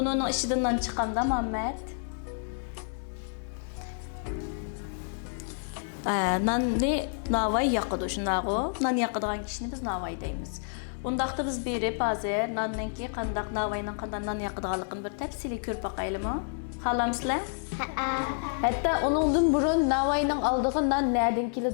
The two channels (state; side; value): silent; right; digital silence